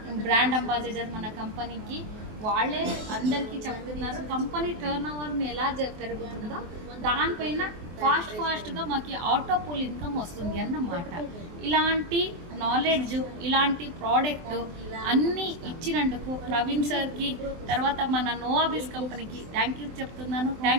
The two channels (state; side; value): late; left; 24 ms